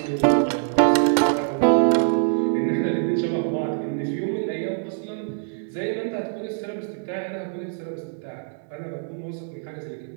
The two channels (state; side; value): silent; left; 62 dB below the other